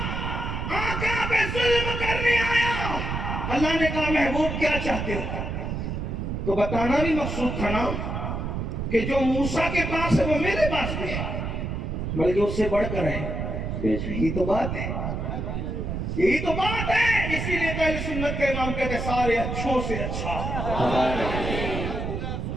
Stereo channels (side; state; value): right; noise; rumble, 3 dB below the sound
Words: آقا پہ ظلم کرنے آیا. اللہ نے کہا محبوب کیا چاہتے ہو؟ تو بتانا بھی مقصود تھا نا کہ جو موسیٰ کے پاس ہے وہ میرے پاس بھی ہے, بلکہ اس سے بڑھ کر ہے. یہی تو بات ہے, یہی تو بات ہے. اسی لیے تو اہل سنت کے امام کہتے ہیں سارے اچھوں سے اچھا,